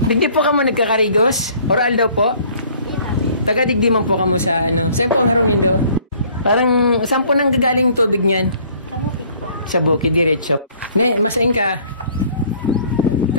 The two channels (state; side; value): inverted; both; correlation -0.56